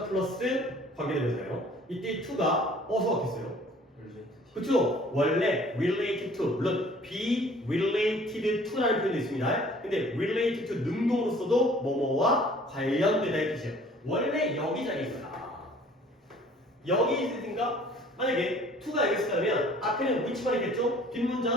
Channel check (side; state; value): both; normal; correlation 0.53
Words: 플러스 관계대명사예요. 이때 to가 어디서 왔겠어요? 그쵸? 원래 related to, 물론 be related to라는 표현도 있습니다. 근데 related to 능동으로서도 뭐뭐와 관련되다 이 뜻이에요. 원래 여기 자리에 있어요. 여기 있으니까 만약에 to가 여기 있으면 앞에는 which만 있겠죠?